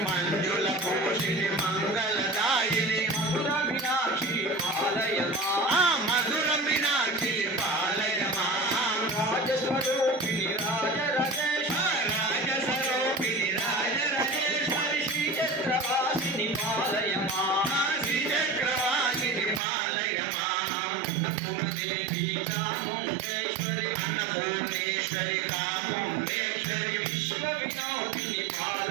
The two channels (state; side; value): drops out; left; at 19.6 s